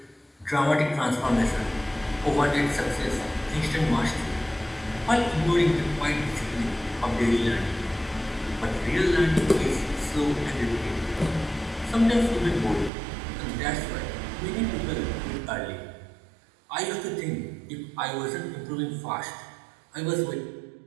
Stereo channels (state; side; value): drops out; left; at 12.9 s